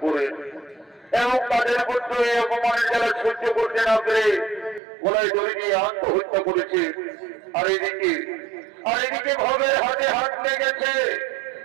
করেন এবং তাদের পুত্র এই অপমানের জ্বালা সহ্য করতে না পেরে গলায় দড়ি দিয়ে আত্মহত্যা করেছে। আর এদিকে ভবের হাতে হাত লেগেছে,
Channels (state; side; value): drops out; left; at 4.8 s